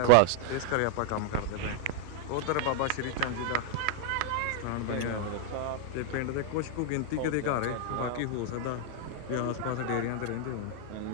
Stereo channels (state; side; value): different; both; correlation 0.00